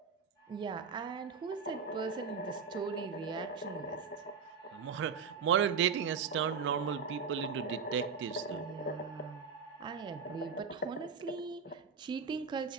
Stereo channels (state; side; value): quieter; left; 5.8 dB